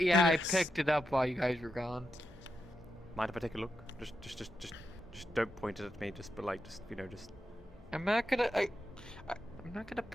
I It is. picked it up while you guys were gone. Mind if I take a look? Just don't point it at me. Just, but like, just just. I'm not gonna. I'm not gonna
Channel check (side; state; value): both; normal; correlation 0.86